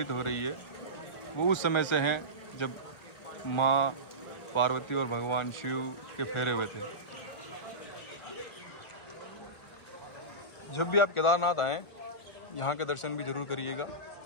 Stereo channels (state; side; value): late; right; 1.4 ms